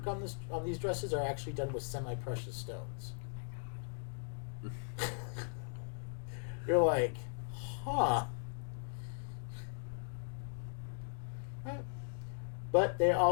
on these dresses are actually done with semi-precious stones. You're like, huh. But they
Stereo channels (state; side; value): silent; right; digital silence